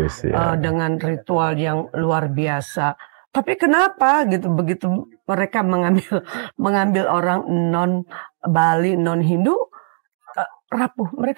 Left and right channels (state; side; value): silent; left; digital silence